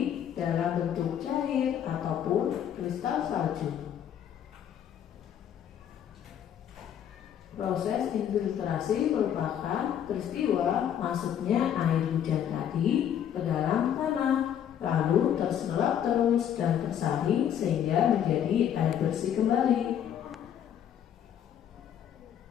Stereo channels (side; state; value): right; quieter; 9.6 dB